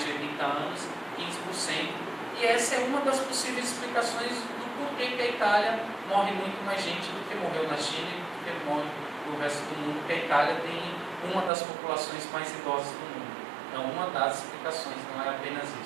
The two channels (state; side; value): drops out; left; at 11.5 s